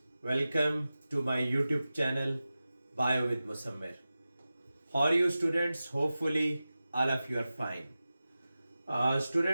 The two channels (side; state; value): both; inverted; correlation -0.95